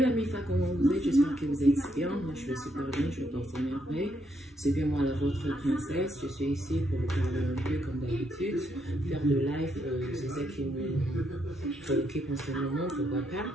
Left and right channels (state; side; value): normal; both; correlation 0.77